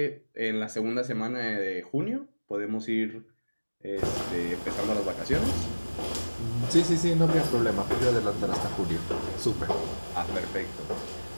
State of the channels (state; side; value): inverted; both; correlation -1.00